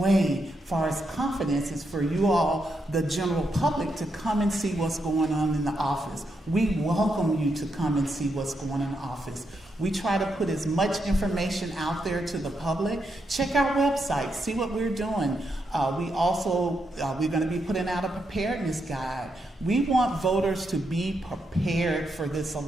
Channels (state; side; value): normal; both; correlation 0.82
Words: as far as confidence, is for you all, the general public, to come and see what's going on in the office. We welcome you to come and see what's going on in the office. We try to put as much information out there to the public. Check our website, see what we're doing. We're going to be putting out a preparedness guide. We want voters to be prepared for this